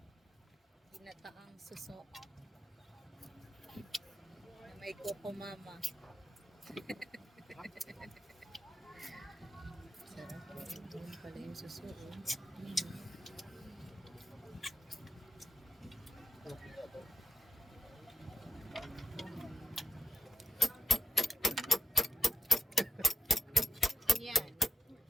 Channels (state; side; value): normal; both; correlation 0.87